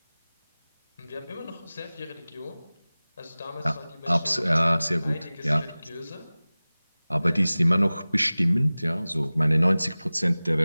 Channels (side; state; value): both; inverted; correlation -0.99